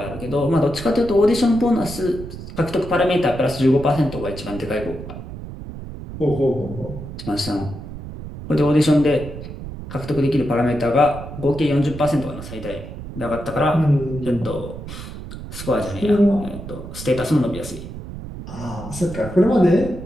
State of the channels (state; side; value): noise; right; rumble, 11 dB below the sound